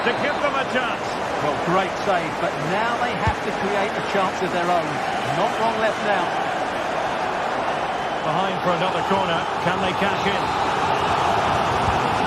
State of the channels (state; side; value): identical; both; correlation 1.00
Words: to give them a chance. Well, great save, but now they have to create a chance of their own. Not long left now. Behind for another corner. Can they cash in?